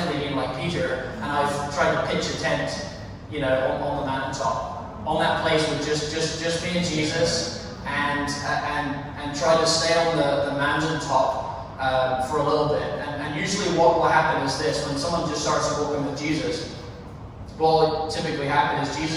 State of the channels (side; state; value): both; identical; correlation 1.00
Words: been like Peter, and I've tried to pitch a tent, on the mountaintop. On that place with just me and Jesus, and try to stay on the mountaintop for a little bit. And usually what will happen is this: when someone just starts walking with Jesus, what will typically happen is